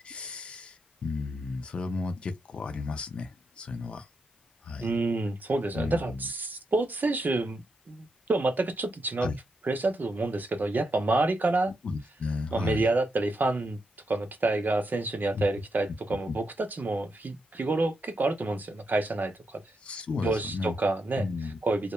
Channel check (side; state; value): both; normal; correlation 0.83